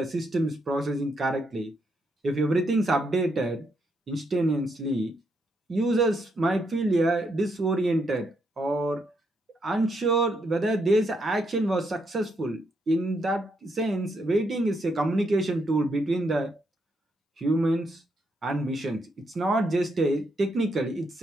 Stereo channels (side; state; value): both; normal; correlation 0.77